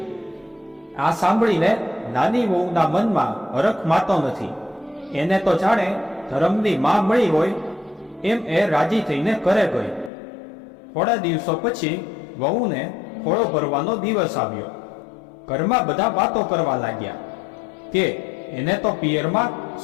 આ સાંભળીને નાની વહુના મનમાં હરખ માતો નથી. એને તો જાણે ધર્મની માં મળી હોય એમ એ રાજી થઈને ઘરે ગઈ. થોડા દિવસો પછી વહુને ખોળો ભરવાનો દિવસ આવ્યો. ઘરમાં બધા વાતો કરવા લાગ્યા કે એને તો પિયરમાં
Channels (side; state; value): right; drops out; at 10.1 s